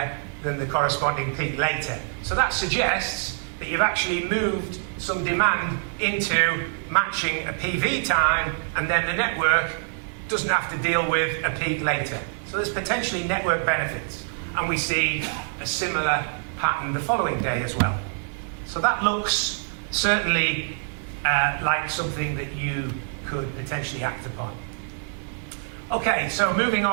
than the corresponding peak later. So that suggests that you've actually moved some demand into matching a PV time, and then the network doesn't have to deal with a peak later. So there's potentially network benefits, and we see a similar pattern the following day as well. So that looks certainly like something that you could potentially act upon. Okay, so moving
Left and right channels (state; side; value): silent; left; 57 dB below the other